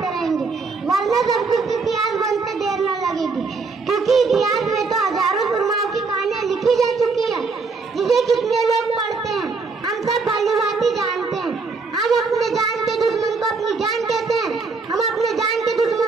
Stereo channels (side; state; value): left; quieter; 4.3 dB